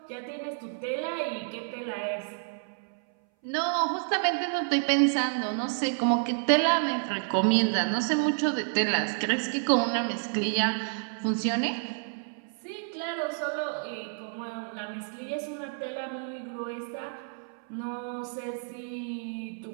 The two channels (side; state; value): left; silent; 58 dB below the other